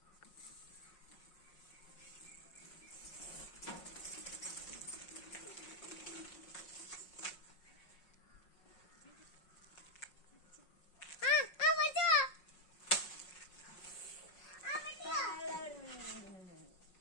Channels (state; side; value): late; right; 5.5 ms